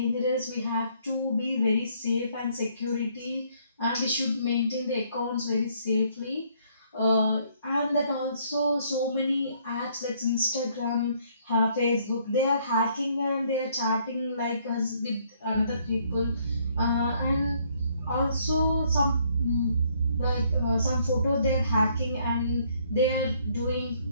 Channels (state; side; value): inverted; both; correlation -0.66